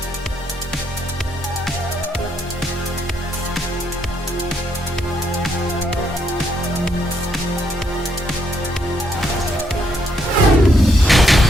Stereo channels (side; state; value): both; normal; correlation 0.74